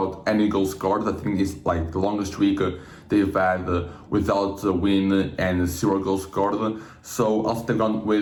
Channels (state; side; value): identical; both; correlation 1.00